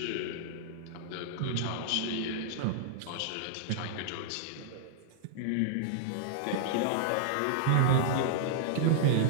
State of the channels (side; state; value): both; different; correlation -0.01